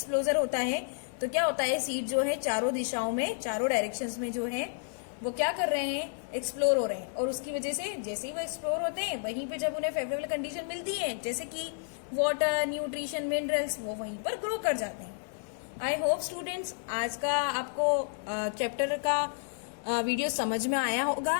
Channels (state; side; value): silent; right; digital silence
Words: होता है तो क्या होता है, सीड जो है चारों दिशाओं में, चारों डायरेक्शंस में जो है वो क्या कर रहे हैं, एक्सप्लोर हो रहे हैं। और उसकी वजह से जैसे ही वो एक्सप्लोर होते हैं वहीं पे जब उन्हें फेवरेबल कंडीशन मिलती है, जैसे कि वाटर, न्यूट्रिशन, मिनरल्स, वो वहीं पर ग्रो कर जाते हैं। आई होप स्टूडेंट्स आज का आपको चैप्टर का वीडियो समझ में आया होगा।